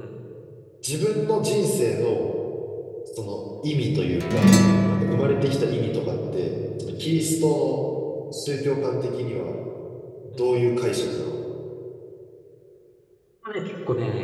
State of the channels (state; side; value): identical; both; correlation 1.00